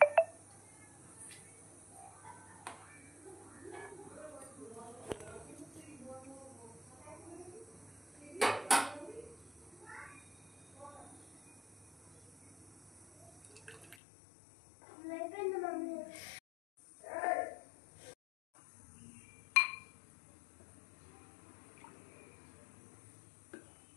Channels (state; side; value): drops out; right; at 14.0 s